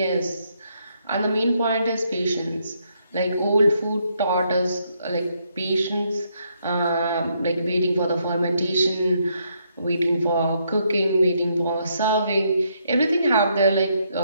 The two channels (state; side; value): inverted; both; correlation -0.75